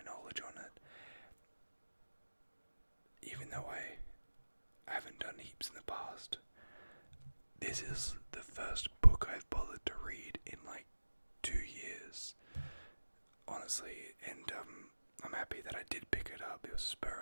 knowledge on it. Even though I haven't done heaps in the past, this is the first book I've bothered to read in like 2 years, honestly, and I'm happy that I did pick it up. It was a spur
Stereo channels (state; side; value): inverted; both; correlation -1.00